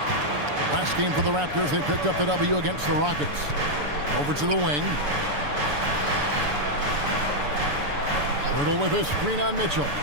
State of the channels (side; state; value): left; late; 6.9 ms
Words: Last game for the Raptors, they picked up the W against the Rockets. Over to the wing. Hurdle with a screen on Mitchell.